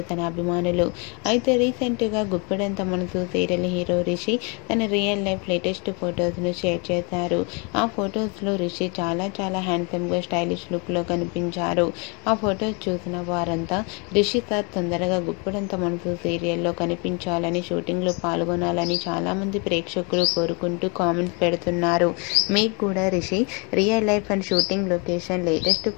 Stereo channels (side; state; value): right; quieter; 32.5 dB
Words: తన అభిమానులు. అయితే రీసెంట్గా గుప్పడంత మనసు సీరియల్ హీరో రిషి తన రియల్ లైఫ్ లేటెస్ట్ ఫొటోస్ను షేర్ చేశారు. ఆ ఫొటోస్లో రిషి చాలా హ్యాండ్సమ్గా స్టైలిష్ లుక్లో కనిపించారు. ఆ ఫొటోస్ చూసిన వారంతా రిషి సార్ తొందరగా గుప్పడంత మనసు సీరియల్లో కనిపించాలని, షూటింగ్లో పాల్గొనాలని చాలామంది ప్రేక్షకులు కోరుకుంటూ కామెంట్స్ పెడుతున్నారు. మీకు కూడా Rishi real life and shooting location latest